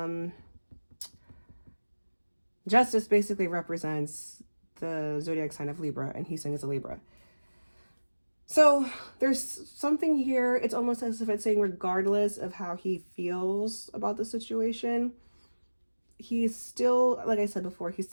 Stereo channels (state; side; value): inverted; both; correlation -1.00